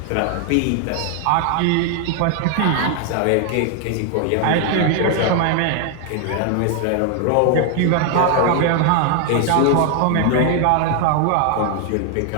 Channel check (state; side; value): different; both; correlation 0.00